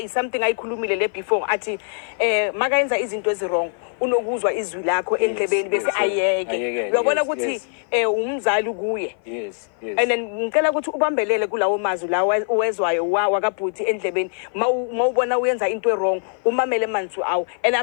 something ayikhulumile le before athi makayenza izinto ezirong unokuzwa izwi lakho endlebeni bese ayeke uyabona ukuthi umzali kuye and then ngicela ukuthi ubambelele kulawo mazwi lawo uwezwayo wakabhuti endlebeni mawubona uyenza into wrong umamele manzi awu and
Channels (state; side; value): silent; right; 56 dB below the other